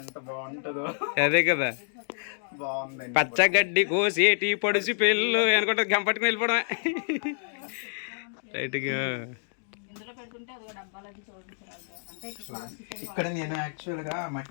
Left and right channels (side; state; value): right; silent; digital silence